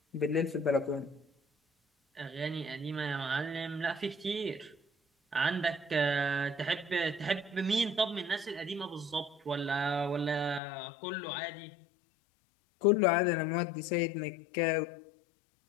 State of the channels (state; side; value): drops out; right; at 10.6 s